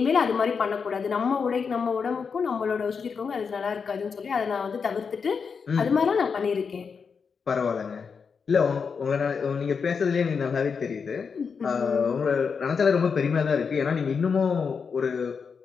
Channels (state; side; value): quieter; right; 5.8 dB